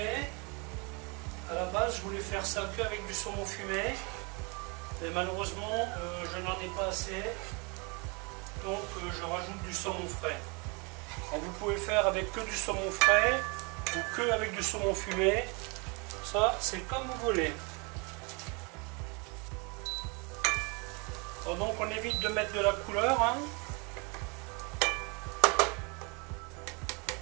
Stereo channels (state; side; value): quieter; left; 31.0 dB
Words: À la base, je voulais faire ça qu'avec du saumon fumé. Mais malheureusement, je n'en ai pas assez. Donc je rajoute du saumon frais. Alors, vous pouvez faire avec que du saumon frais ou que avec du saumon fumé. Ça, c'est comme vous voulez. Alors, donc on évite de mettre de la couleur. Hein.